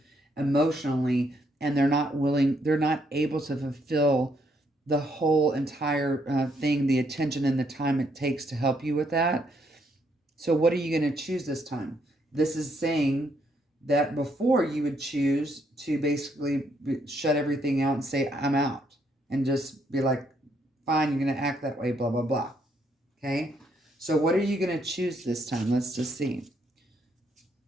emotionally, and they're not able to fulfill the whole entire thing, the attention and the time it takes to help you with that. So what are you going to choose this time? This is saying that before you would choose to basically shut everything out and say, I'm out, and just be like, fine, you're going to act that way, blah, blah, blah. Okay. So what are you going to choose this time? Let's just see.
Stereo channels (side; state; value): both; normal; correlation 0.73